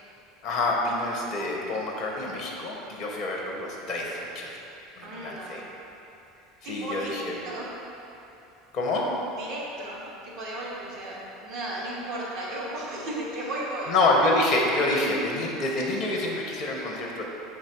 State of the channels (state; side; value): normal; both; correlation 0.31